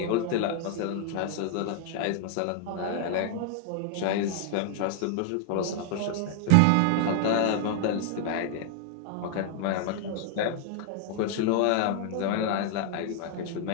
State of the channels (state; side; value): different; both; correlation 0.00